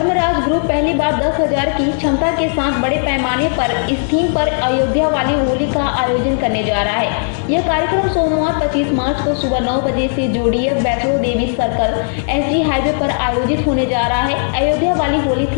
ग्रुप पहली बार 10,000 की क्षमता के साथ बड़े पैमाने पर इस थीम पर अयोध्या वाली होली का आयोजन करने जा रहा है। यह कार्यक्रम सोमवार 25 मार्च को सुबह 9 बजे से जोड़ीएफ Vaishno Devi circle SG highway पर आयोजित होने जा रहा है। अयोध्या वाली होली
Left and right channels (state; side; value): silent; right; digital silence